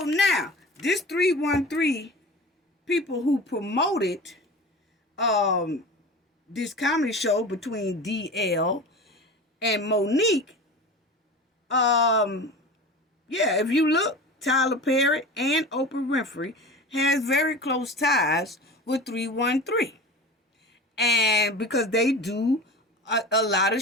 now, this 313 people who promoted this comedy show between DL and Monique, if you look, Tyler Perry and Oprah Winfrey has very close ties with 313. And because they do a lot of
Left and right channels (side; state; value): both; normal; correlation 0.34